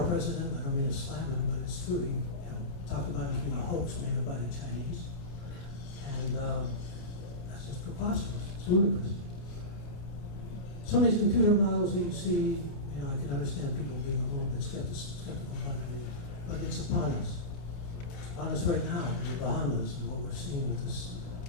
president, I don't mean to slam him, but it's true. He talked about it as being a hoax made up by the Chinese. And that's just preposterous. It's ludicrous. Some of these computer models that you see, I can understand people being a little bit skeptical about it, but it's upon us. It's upon us right now in the Bahamas, and what we're seeing with this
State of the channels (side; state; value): right; late; 28 ms